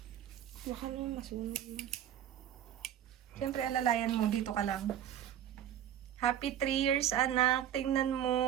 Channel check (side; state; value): left; quieter; 10.6 dB